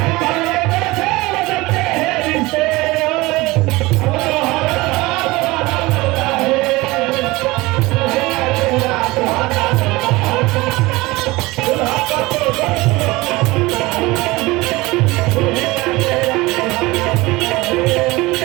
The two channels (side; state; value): left; quieter; 21.2 dB